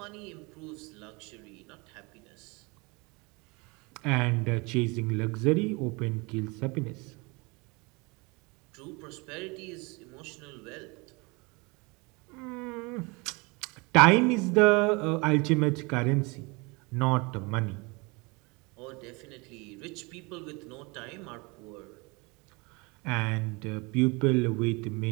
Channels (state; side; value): quieter; left; 27.5 dB